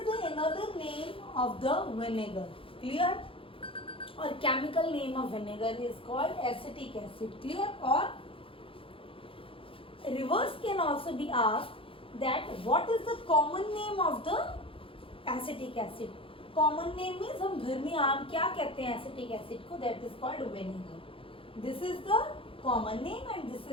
the another name of the vinegar. Clear? और chemical name of vinegar is called acetic acid. Clear? और reverse can also be asked that what is the common name of the acetic acid. Common name means हम घर में आम क्या कहते हैं acetic acid को, that is called vinegar. This is the common name and this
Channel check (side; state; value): right; late; 0.26 ms